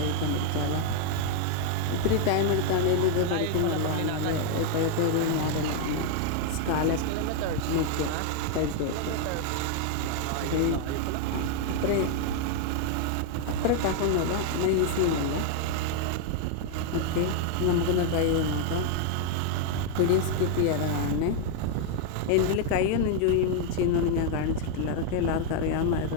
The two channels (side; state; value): both; different; correlation 0.00